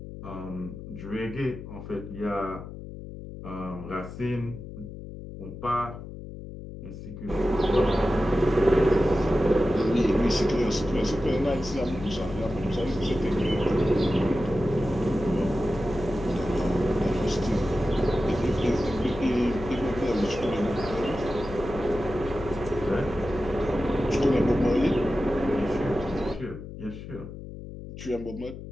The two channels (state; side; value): noise; left; hum, 11 dB below the sound